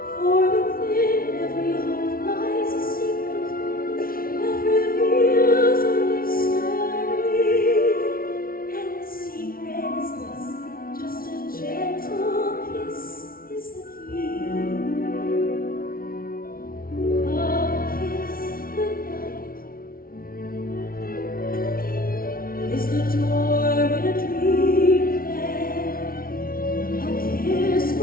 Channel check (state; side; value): late; right; 0.43 ms